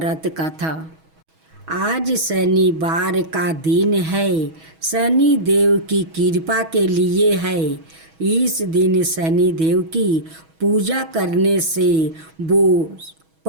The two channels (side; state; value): left; late; 6.2 ms